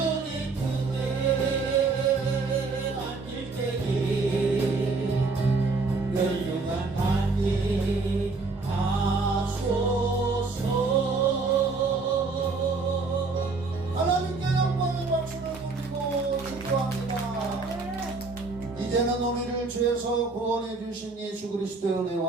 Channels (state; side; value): quieter; left; 4.0 dB